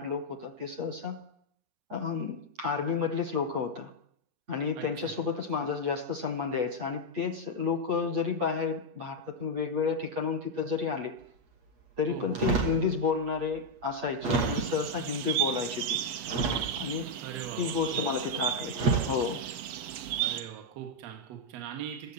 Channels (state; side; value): late; left; 8.3 ms